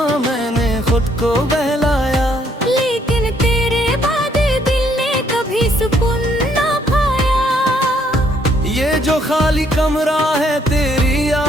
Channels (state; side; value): normal; both; correlation 0.68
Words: मैंने खुद को बहलाया, लेकिन तेरे बाद दिल ने कभी सुकून ना पाया। ये जो खाली कमरा है तेरी